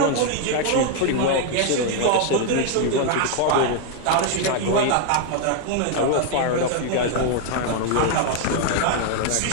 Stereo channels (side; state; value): both; different; correlation 0.00